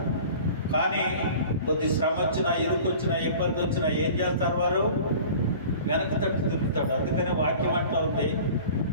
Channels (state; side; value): inverted; both; correlation -0.43